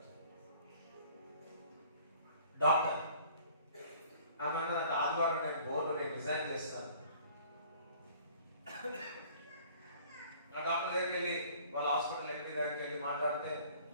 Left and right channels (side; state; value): both; inverted; correlation -0.52